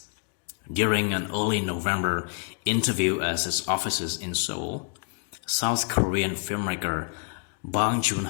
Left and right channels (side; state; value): right; quieter; 39.9 dB